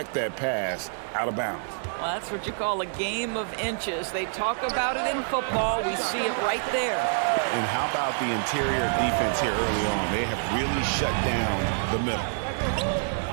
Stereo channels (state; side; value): silent; left; digital silence